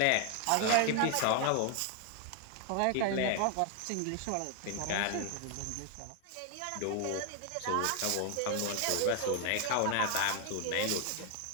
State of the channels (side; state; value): both; different; correlation 0.00